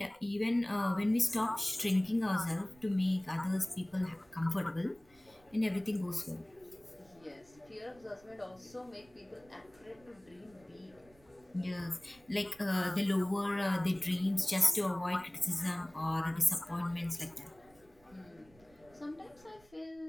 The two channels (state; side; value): noise; right; rumble, 28 dB below the sound